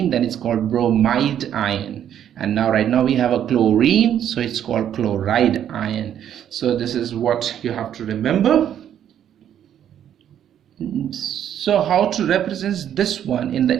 then it's called bromide ion. And now right now we have a chlorine, so it's called chloride ion. So this is what you have to remember. So how to represent this one in the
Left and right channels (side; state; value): left; quieter; 10.0 dB